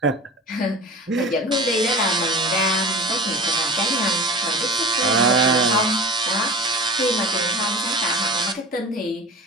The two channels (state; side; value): normal; both; correlation 0.35